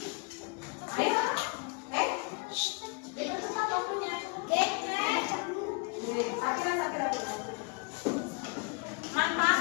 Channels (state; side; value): quieter; right; 31.8 dB